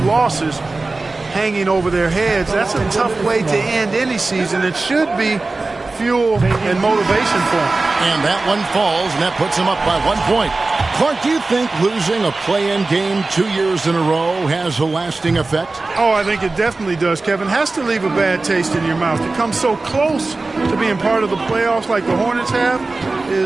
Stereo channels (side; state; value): left; quieter; 3.4 dB